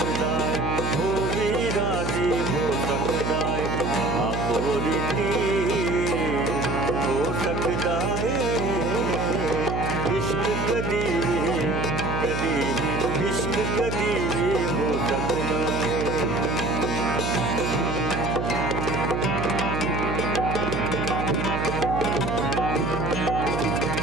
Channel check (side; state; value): right; noise; hum, 2 dB below the sound